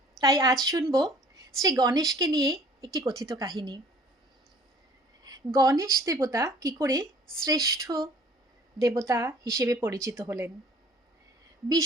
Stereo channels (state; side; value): normal; both; correlation 0.53